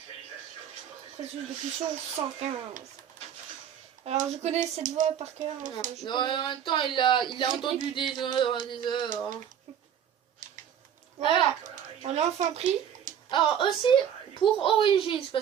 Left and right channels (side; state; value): left; quieter; 9.2 dB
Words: Processus de fusion 115. Alors, je connais cette voix par cœur. Non, en même temps, il a entendu des heures. Voilà. On l'a enfin pris. Alors, aussi, pour Origins,